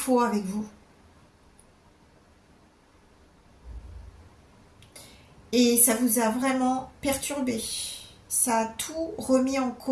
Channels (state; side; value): identical; both; correlation 1.00